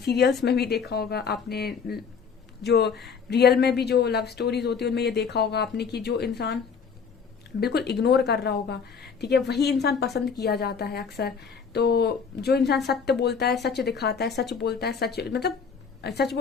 में भी देखा होगा, आपने जो रियल में भी जो लव स्टोरीज होती है उनमें ये देखा होगा आपने कि जो इंसान बिल्कुल इग्नोर कर रहा होगा, ठीक है, वही इंसान पसंद किया जाता है अक्सर। तो जो इंसान सत्य बोलता है, सच दिखाता है, सच बोलता है, सच मतलब सच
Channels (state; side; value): quieter; right; 6.0 dB